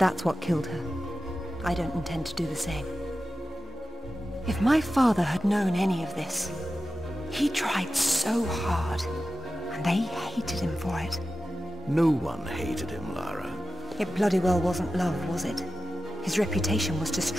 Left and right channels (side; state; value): both; normal; correlation 0.93